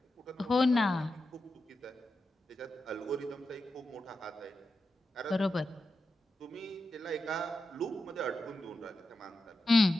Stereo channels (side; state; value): both; normal; correlation 0.89